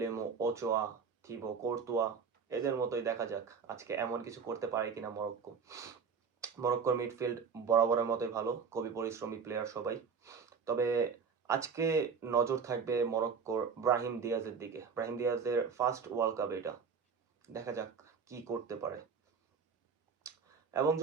ওচোয়া, থিবো কোর্তুয়া, এদের মতোই দেখা যাক আজকে এমন কিছু করতে পারে কিনা মরক্কো। মরক্কোর মিডফিল্ড বরাবরের মতোই ভালো, খুবই পরিশ্রমী প্লেয়ার সবাই। তবে আজকে নজর থাকবে মরক্কোর ব্রাহিম দিয়াজের দিকে। ব্রাহিম দিয়াজের ফার্স্ট ওয়ার্ল্ড কাপ এটা, দেখা যাক কি করতে পারে। এবং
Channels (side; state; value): left; quieter; 5.9 dB